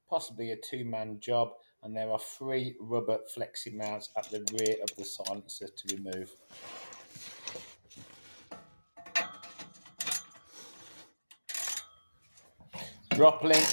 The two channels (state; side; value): inverted; both; correlation -1.00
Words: possibly a two-man job, and there are 3 rubber flexi mounts at the rear of the silencer to remove. Drop